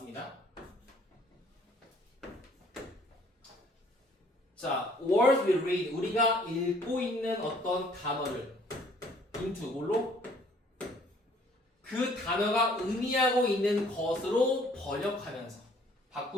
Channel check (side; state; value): both; normal; correlation 0.59